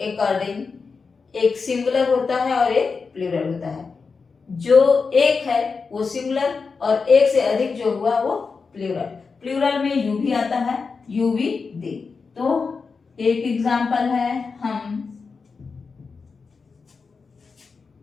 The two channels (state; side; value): quieter; right; 4.9 dB